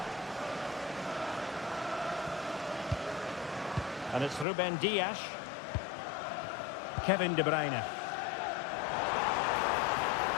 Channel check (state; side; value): drops out; right; at 4.5 s